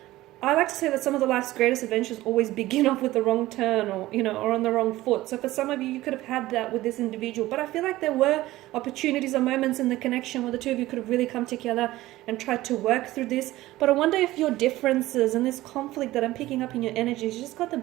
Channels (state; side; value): quieter; left; 16.8 dB